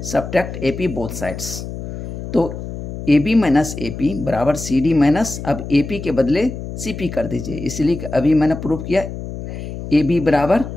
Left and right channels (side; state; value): left; noise; hum, 8 dB below the sound